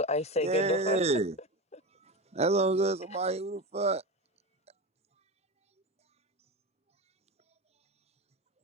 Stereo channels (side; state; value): both; normal; correlation 0.22